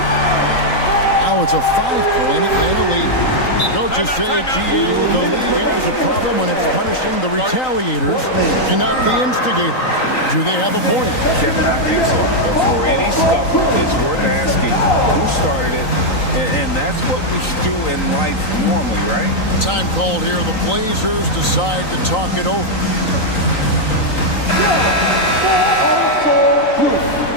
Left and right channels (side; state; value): right; late; 3.9 ms